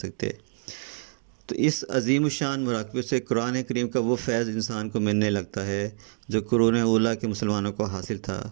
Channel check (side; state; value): left; silent; digital silence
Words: تو اس عظیم الشان مراقبے سے قرآن کریم کا وہ فیض انسان کو ملنے لگتا ہے جو قرون اولیٰ کے مسلمانوں کو حاصل تھا،